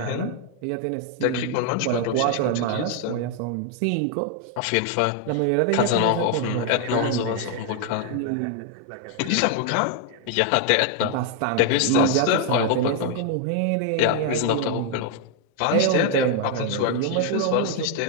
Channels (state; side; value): different; both; correlation 0.00